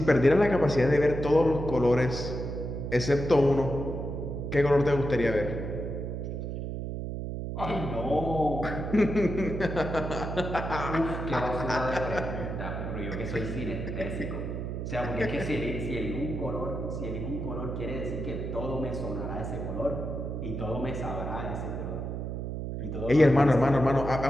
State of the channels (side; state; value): right; noise; hum, 4 dB below the sound